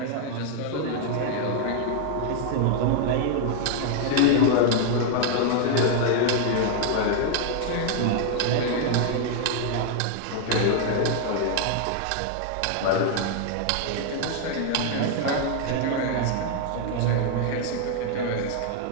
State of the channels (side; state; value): both; different; correlation 0.00